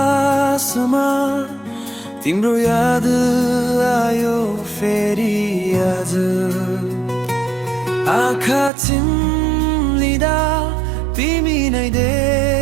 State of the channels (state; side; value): drops out; left; at 8.7 s